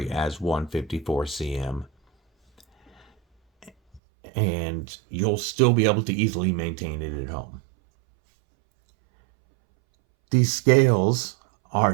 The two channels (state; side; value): drops out; left; at 4.0 s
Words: as 154 cm. And you'll still be able to easily maintain it at home. These scales